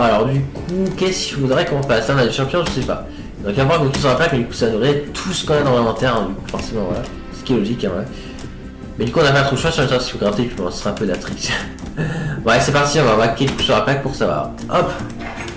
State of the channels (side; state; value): both; identical; correlation 1.00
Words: alors du coup qu'est-ce qu'il faudrait qu'on fasse? Là on a des champignons, je sais pas. Donc on va voir qu'on sur la plaque, mais du coup ça devrait être tout ce qu'on a dans l'inventaire, hein, du coup forcément voilà. Ce qui est logique, hein, voilà. Mais du coup on a pas trop de choix sur le temps si vous grattez, puis on sera un peu de la trick. Ouais c'est parti, on va vaquer le coup sur la plaque pour savoir. Hop,